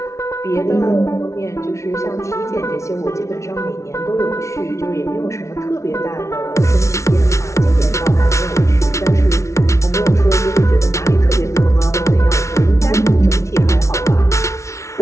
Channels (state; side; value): late; right; 0.14 ms